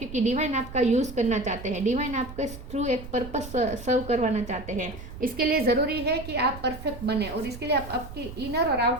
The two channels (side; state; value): right; noise; rumble, 12 dB below the sound